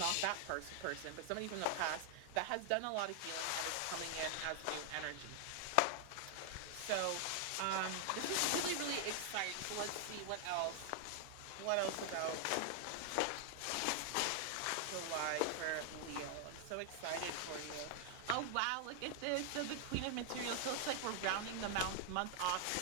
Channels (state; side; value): different; both; correlation 0.00